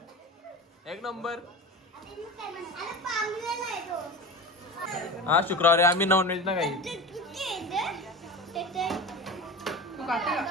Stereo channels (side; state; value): both; normal; correlation 0.30